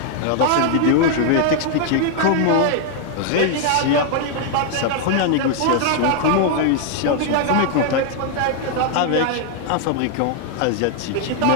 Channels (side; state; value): both; different; correlation 0.00